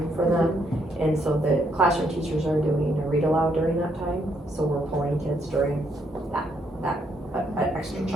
for them. And so the classroom teachers are doing a read aloud during that time, so we're pulling kids during that extra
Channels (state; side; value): normal; both; correlation 0.74